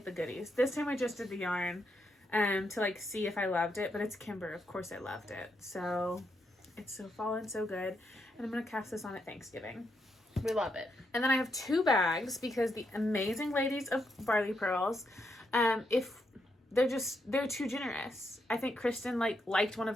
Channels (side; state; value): both; normal; correlation 0.80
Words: the goodies. This time I just did the yarn to see if I loved it. But it's Kimber. Of course I loved it. So It's so fall and so good. And I'm going to cast this on at Thanksgiving. We love it. And then I have 2 bags because the amazing ladies of Barley Pearls, if they're too generous. I think Christen liked one of